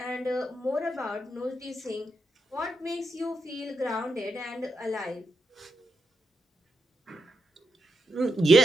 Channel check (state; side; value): normal; both; correlation 0.83